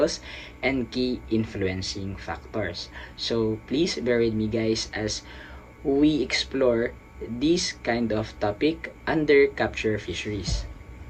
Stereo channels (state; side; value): identical; both; correlation 1.00